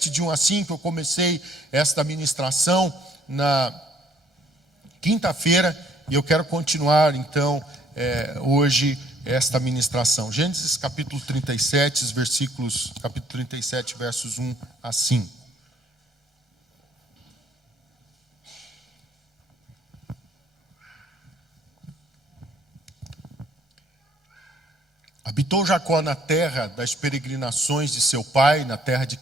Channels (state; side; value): normal; both; correlation 0.63